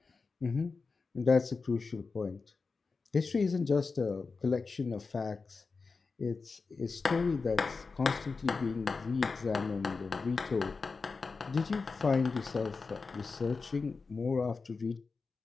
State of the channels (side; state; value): right; quieter; 4.4 dB